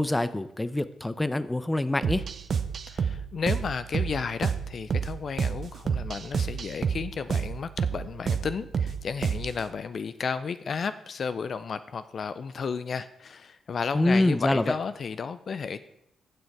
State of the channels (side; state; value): both; normal; correlation 0.85